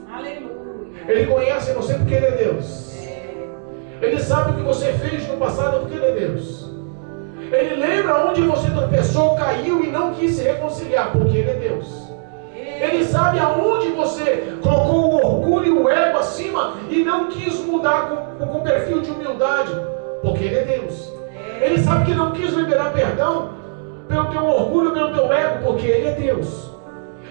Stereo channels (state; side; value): silent; left; 64 dB below the other